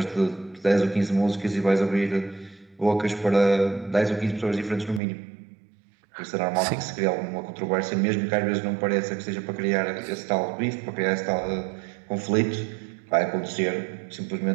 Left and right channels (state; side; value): drops out; left; at 5.0 s